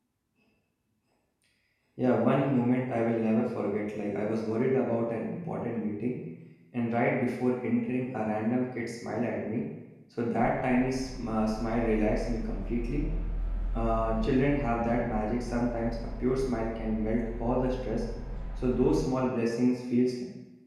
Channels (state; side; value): identical; both; correlation 1.00